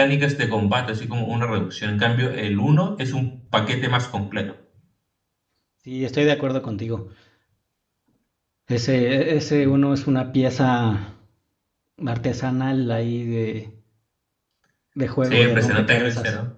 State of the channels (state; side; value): identical; both; correlation 1.00